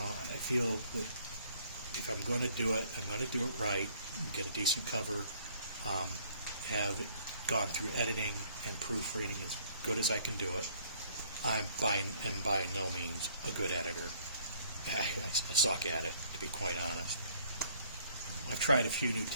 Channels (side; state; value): both; inverted; correlation -0.60